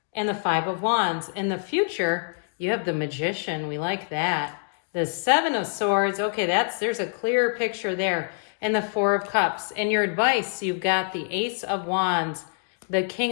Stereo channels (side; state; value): right; silent; 61 dB below the other